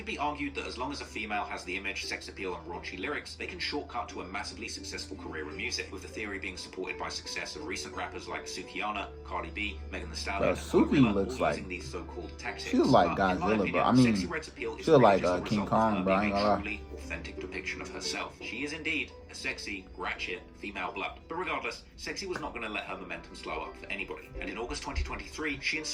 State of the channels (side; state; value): both; identical; correlation 1.00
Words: be argued that as long as a female has the image, sex appeal, and raunchy lyrics, they can shortcut to a massively successful career in music. With the theory being supported by success of recent rappers like Sukihana, Cardi B, Megan Thee Stallion, and Suki looks all like using these so-called tactics. she looks like Godzilla, bro. I mean, she looks like King Kong, bro. I ain't gonna lie. Authentic depiction of herself. She is indeed a sexy, ratchet, female blood. But regardless, Sexyy was not going to let her momentum slow up for anybody. And in August 2023, she and